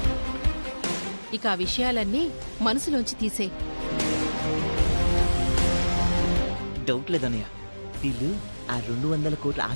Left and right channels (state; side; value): inverted; both; correlation -1.00